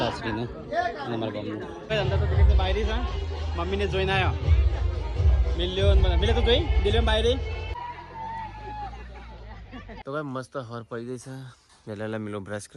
લાસરીને અને અમારા ગામનું અંદર તો દિલીપને બાયરી છે મમ્મીને જોઈને આવ્યો મિલે તો જોઈ દિલીપ બાયરી તો ભાઈ મસ્ત હર પડી ગઈ છે વેલા મિલો બ્રશ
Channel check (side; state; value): both; identical; correlation 1.00